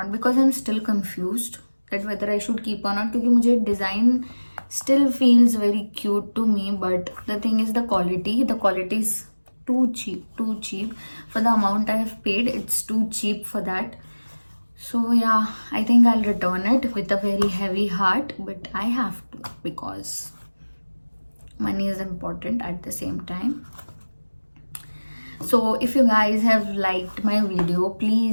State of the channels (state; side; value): inverted; both; correlation -1.00